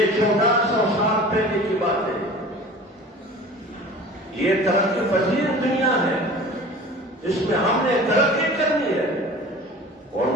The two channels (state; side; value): normal; both; correlation 0.41